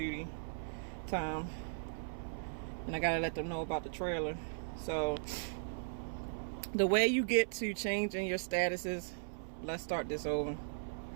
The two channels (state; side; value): silent; left; 52 dB below the other